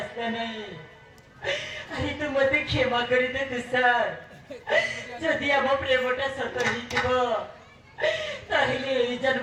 ନାହିଁ। ଆରେ ତୁ ମତେ କ୍ଷମା କରିଦେ ତୁଷାର। ଯଦି ଆମ ପ୍ରେମଟା ସତ ହେଇଥିବ ତାହେଲେ ଏଇ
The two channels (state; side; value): identical; both; correlation 1.00